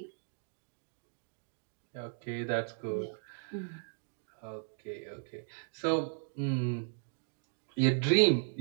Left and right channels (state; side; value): silent; left; digital silence